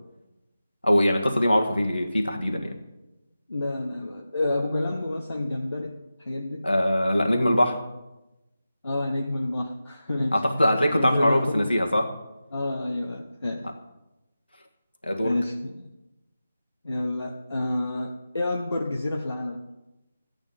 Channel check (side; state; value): both; inverted; correlation -0.93